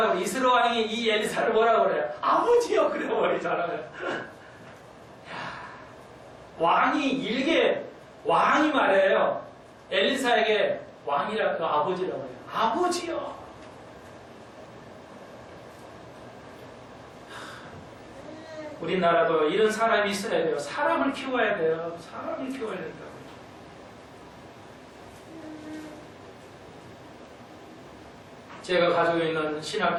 그래? 이스라엘 왕이 이 엘리사를 뭐라고 그래요? 아버지요 그래 버리잖아요. 왕이 말해요. 엘리사에게 왕이라고 아버지라고 해요. 아버지요. 우리나라도 이런 사람이 있어야 돼요. 사람을 키워야 돼요. 사람을 키워야 된다고. 제가 가지고 있는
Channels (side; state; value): both; identical; correlation 1.00